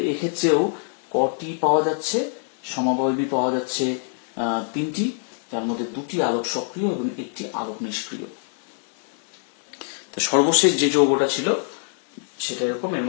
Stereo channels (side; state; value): right; silent; 57 dB below the other